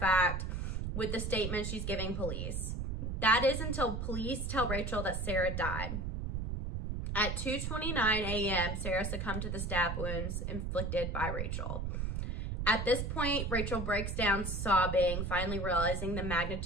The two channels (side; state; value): right; noise; rumble, 2 dB below the sound